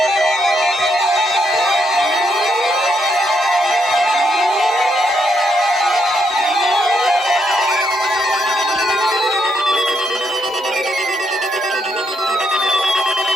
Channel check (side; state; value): both; normal; correlation 0.77